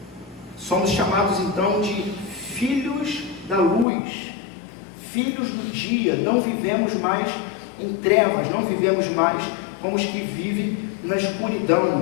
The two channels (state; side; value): drops out; right; at 3.9 s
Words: Somos chamados então de filhos da luz, filhos do dia. Não vivemos mais em trevas, não vivemos mais como os que vivem na